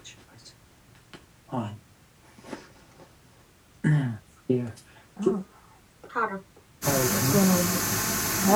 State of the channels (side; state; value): both; identical; correlation 1.00